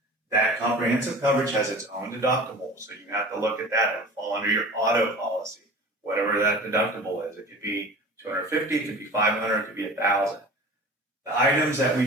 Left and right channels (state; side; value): normal; both; correlation 0.39